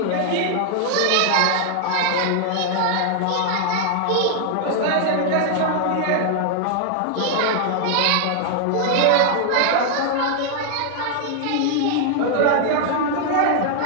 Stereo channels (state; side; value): different; both; correlation 0.00